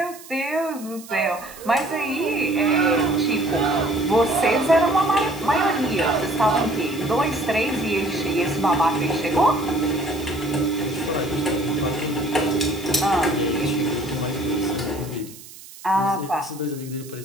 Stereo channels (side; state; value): right; noise; hiss, 18 dB below the sound